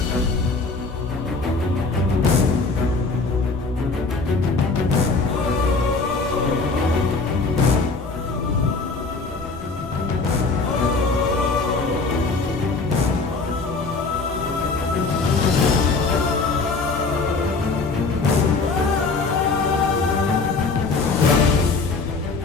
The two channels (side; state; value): right; quieter; 4.0 dB